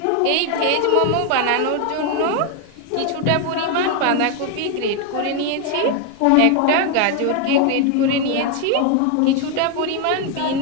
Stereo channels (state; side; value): different; both; correlation 0.01